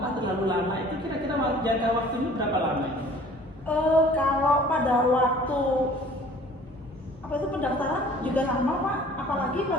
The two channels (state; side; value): normal; both; correlation 0.50